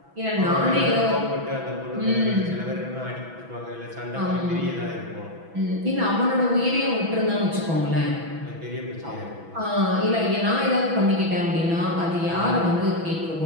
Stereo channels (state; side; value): late; left; 6.1 ms